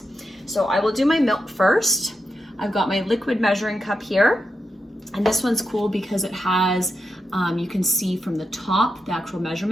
So I will do my milk first. I've got my liquid measuring cup here. And this one's cool because it has, you can see from the top, the actual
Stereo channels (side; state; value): both; normal; correlation 0.86